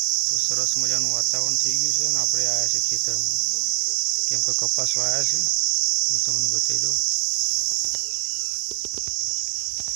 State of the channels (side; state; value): left; silent; digital silence